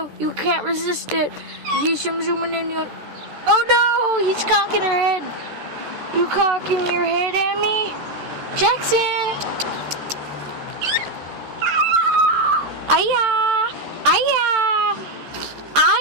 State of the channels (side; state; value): left; late; 14 ms